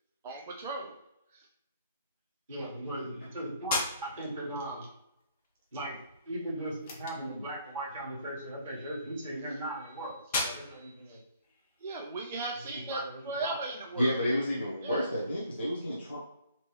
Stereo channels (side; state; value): both; inverted; correlation -0.62